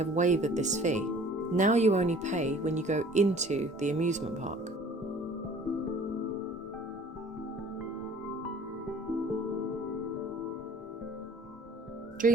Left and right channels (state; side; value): normal; both; correlation 0.50